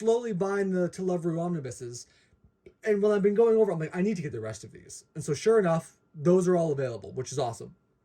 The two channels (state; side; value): identical; both; correlation 1.00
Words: buying the To Love Rue omnibuses. And when I've been going over, I'm like, I need to get the rest of these. And so sure enough, those are all available, which is awesome.